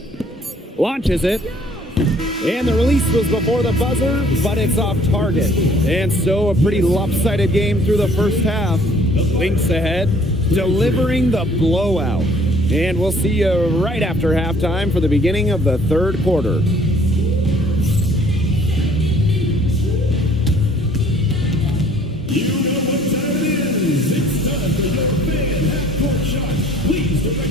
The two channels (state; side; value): normal; both; correlation 0.57